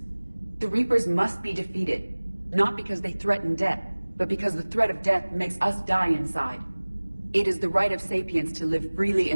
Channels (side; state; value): both; inverted; correlation -1.00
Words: The Reapers must be defeated, not because they threaten death, but because the threat of death makes us die inside. It is the right of sapiens to live freely